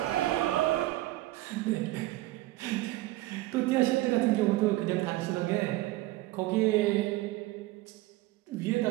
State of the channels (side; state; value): left; quieter; 17.6 dB